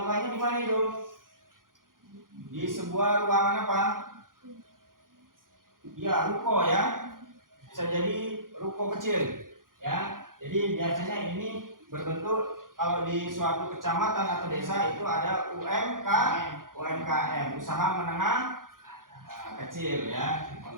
di mana itu? Di sebuah ruangan apa? Ya, ruko ya. Bisa jadi ruko kecil ya. Jadi biasanya ini berbentuk kalau di suatu kecamatan atau desa itu ada UMKM, usaha menengah kecil ya,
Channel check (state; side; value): late; left; 0.90 ms